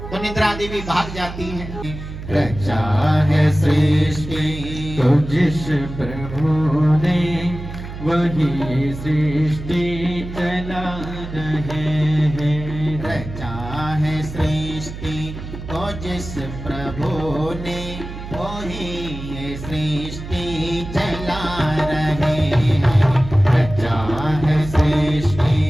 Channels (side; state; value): right; noise; hum, 10 dB below the sound